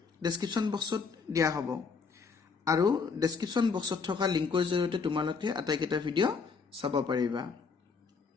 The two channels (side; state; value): right; quieter; 5.2 dB